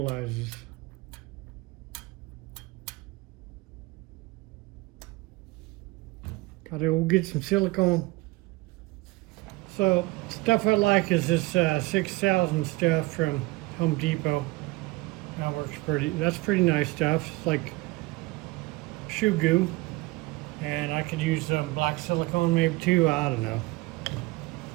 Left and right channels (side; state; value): left; quieter; 21.8 dB